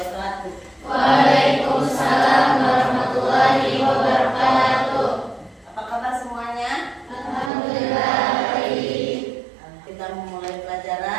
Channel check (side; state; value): left; drops out; at 7.5 s